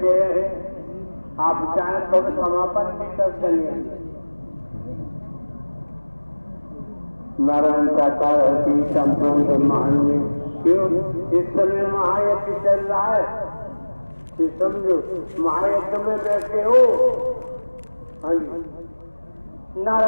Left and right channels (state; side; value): inverted; both; correlation -1.00